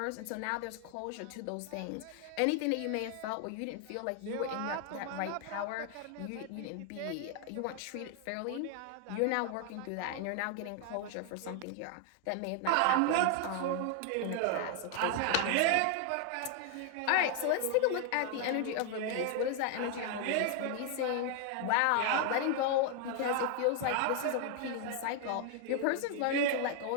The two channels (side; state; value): both; different; correlation 0.00